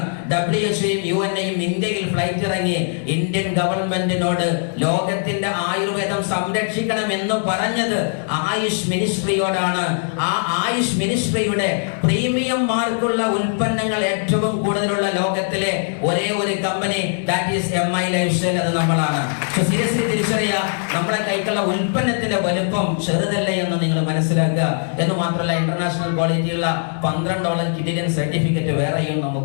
WHO-യും UN-യും ഇന്ത്യയിൽ ഫ്ലൈറ്റ് ഇറങ്ങി ഇന്ത്യൻ ഗവൺമെന്റിനോട് ലോകത്തിന്റെ ആയുർവേദം സംരക്ഷിക്കണം എന്ന് പറഞ്ഞത് ആയുഷ് മിനിസ്ട്രിയോടാണ്. ആ ആയുഷ് മിനിസ്ട്രിയുടെ പ്രീമിയം മാർക്കുള്ള ഉൽപ്പന്നങ്ങൾ ഏറ്റവും കൂടുതലുള്ള ലോകത്തിലെ ഒരേ ഒരു company that is MI life style, അത് നമ്മളാണ്. സീരിയസ്ലി തിരിച്ചറിയുക, നമ്മളെ കൈക്കുള്ള ഉൽപ്പന്നത്തിന്റെ വലുപ്പം ചെറുതല്ല എന്ന് നിങ്ങൾ മനസ്സിലാക്കുക. എന്ന് മാത്രമല്ല, ഇന്റർനാഷണൽ ക്വാളിറ്റിയുള്ള 12ഓളം കിഡിയൻ സർട്ടിഫിക്കറ്റ് വേറെയും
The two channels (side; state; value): right; silent; digital silence